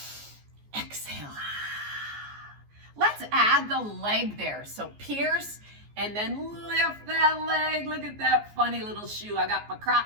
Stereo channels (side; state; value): left; late; 14 ms